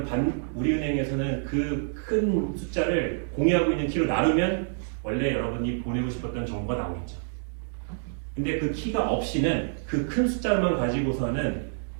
우리은행에서는 그 큰 숫자를 공유하고 있는 키로 나누면 원래 여러분이 보내고 싶었던 정보가 나오겠죠. 근데 그 키가 없이는 그 큰 숫자만 가지고서는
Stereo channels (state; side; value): silent; left; digital silence